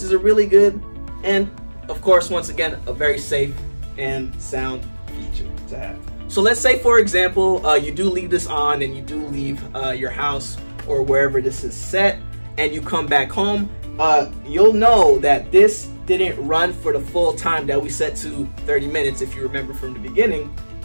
is a really good and, of course, once again, a very safe and sound feature to have. So let's say, for example, you do leave this on and you do leave your house or wherever this is set and you come back home, you'll know that this didn't run for the full time that we set to 30 minutes, if you remember from the beginning,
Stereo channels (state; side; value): inverted; both; correlation -1.00